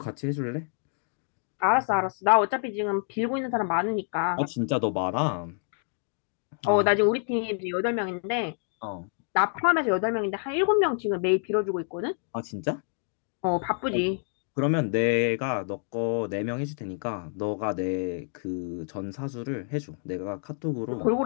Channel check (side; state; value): right; silent; 56 dB below the other